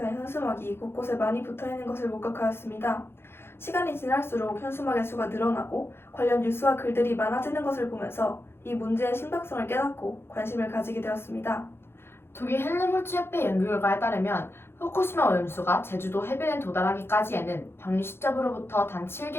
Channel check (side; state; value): right; late; 0.11 ms